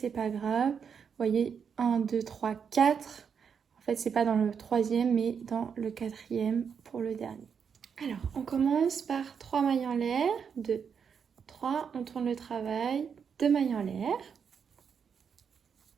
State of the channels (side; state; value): left; quieter; 6.8 dB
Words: pas grave. Vous voyez, 1, 2, 3, 4. En fait, c'est pas dans le troisième, mais dans le quatrième pour le dernier. Alors, on commence par 3 mailles en l'air. 2, 3. On tourne le travail. 2 mailles en l'air.